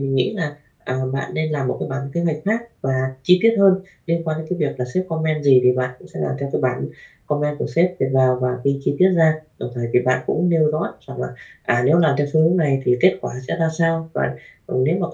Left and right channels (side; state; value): both; identical; correlation 1.00